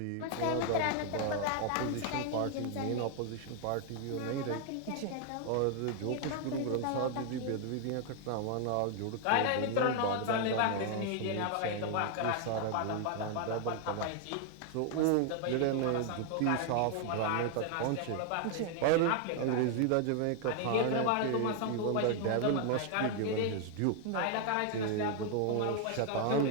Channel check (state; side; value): different; both; correlation 0.00